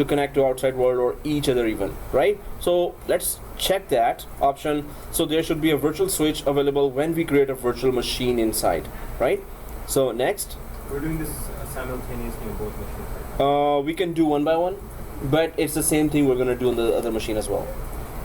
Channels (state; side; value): identical; both; correlation 1.00